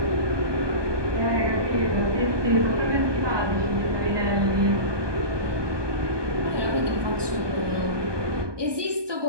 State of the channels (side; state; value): left; late; 1.2 ms